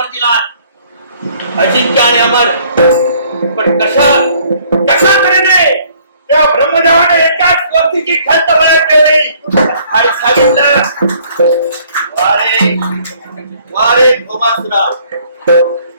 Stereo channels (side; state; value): both; inverted; correlation -0.60